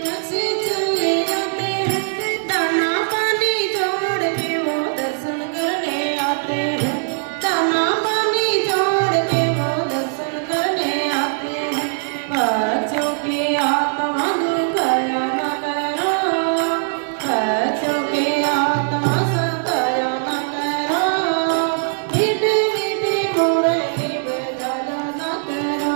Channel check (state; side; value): silent; left; 66 dB below the other